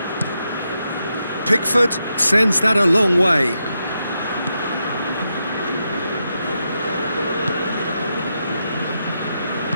Pickford sends that a long way.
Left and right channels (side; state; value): both; inverted; correlation -0.85